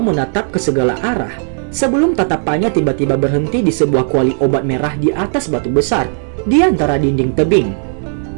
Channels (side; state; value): left; silent; digital silence